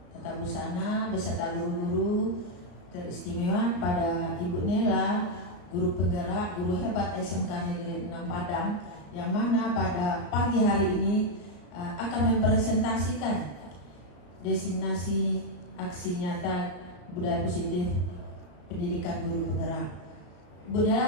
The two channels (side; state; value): right; late; 34 ms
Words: Tata Busana beserta guru-guru teristimewa pada Ibu Nela, guru penggerak, guru hebat SMK Negeri 6 Padang, yang mana pada pagi hari ini akan mempresentasikan diseminasi aksi nyata budaya positif pendidikan guru penggerak. Ibu